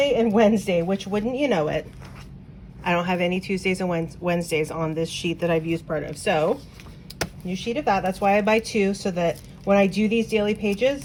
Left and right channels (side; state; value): both; identical; correlation 1.00